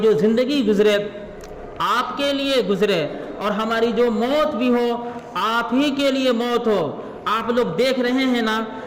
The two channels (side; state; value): both; identical; correlation 1.00